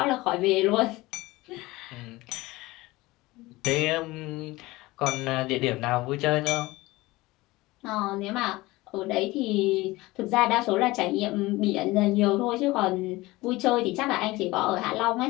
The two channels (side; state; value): right; quieter; 20.2 dB